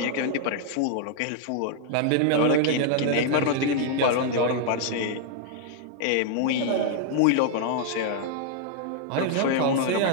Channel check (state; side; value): different; both; correlation -0.01